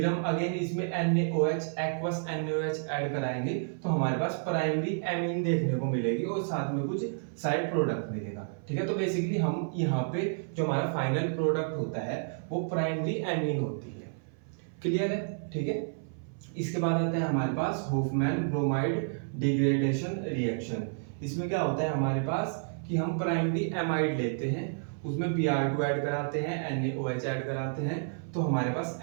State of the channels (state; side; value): silent; left; 55 dB below the other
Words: हम अगेन इसमें NaOH एक्वस NaOH ऐड कराएंगे, तो हमारे पास प्राइमरी एमीन देखने को मिलेगी, और साथ में कुछ साइड प्रोडक्ट मिलेगा। ठीक है। तो बेसिकली हम यहाँ पे जो हमारा फाइनल प्रोडक्ट होता है वो प्राइमरी एमीन होती है। क्लियर है। ठीक है। इसके बाद आता है हमारे पास होफमैन ब्रोमाइड डिग्रेडेशन रिएक्शन। इसमें क्या होता है हमारे पास कि हम प्राइमरी एमाइड लेते हैं, उसमें Br2 ऐड कराते हैं, NaOH ऐड कराते हैं, तो हमारे पास